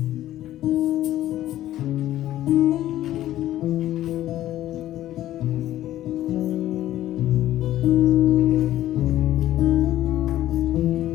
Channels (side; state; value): right; quieter; 13.6 dB